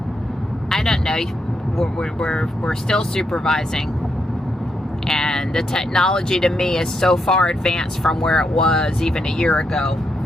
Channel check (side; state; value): both; normal; correlation 0.81